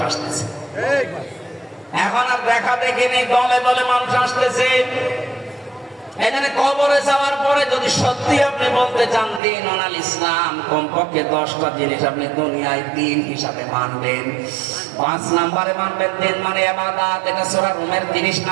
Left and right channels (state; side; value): drops out; left; at 9.4 s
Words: আসতেছে। এখন আর দেখা দেখি নেই, দলে দলে মানুষ আসতেছে। এখানে কবরে যাওয়ার পরে যদি সত্যি আপনি বলতে চান দিন অনাল ইসলাম, কমপক্ষে 10টা জিনিস আপনি দুনিয়ায় দিন হিসাবে মানবেন। 5 নম্বরে মানবেন দিন মানে ইবাদত, এটা সূরা রুমের 30